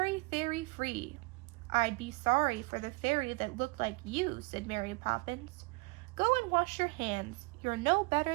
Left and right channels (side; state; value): left; quieter; 27.0 dB